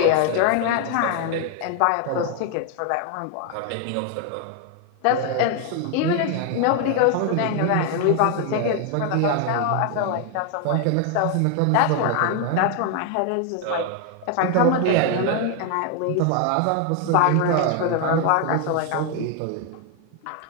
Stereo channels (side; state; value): both; different; correlation 0.01